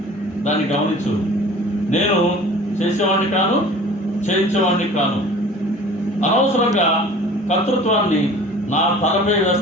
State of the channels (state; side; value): normal; both; correlation 0.45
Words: దాన్ని గమనించు. నేను చేసేవాడిని కాను, చేయించేవాడిని కాను. అనవసరంగా కర్తృత్వాన్ని నా తలపై